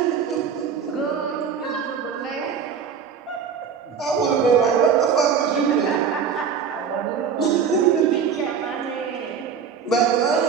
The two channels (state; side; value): quieter; left; 6.8 dB